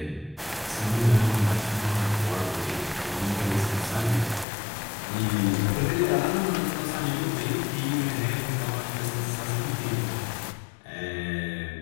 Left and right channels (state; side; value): drops out; right; at 4.5 s